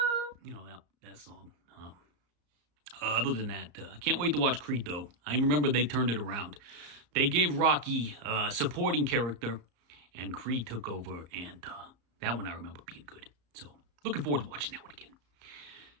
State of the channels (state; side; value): late; left; 33 ms